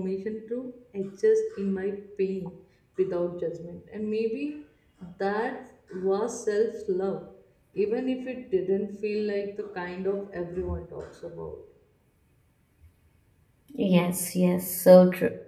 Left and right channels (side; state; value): both; identical; correlation 1.00